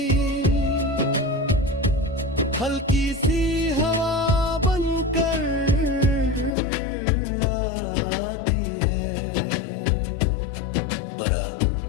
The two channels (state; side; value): drops out; right; at 6.6 s